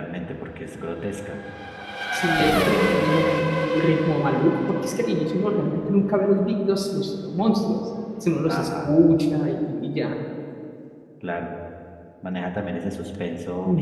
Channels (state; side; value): identical; both; correlation 1.00